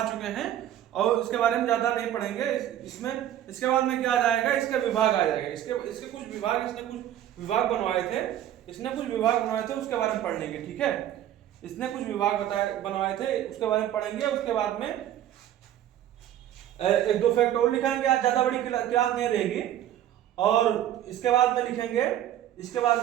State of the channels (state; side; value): quieter; left; 11.8 dB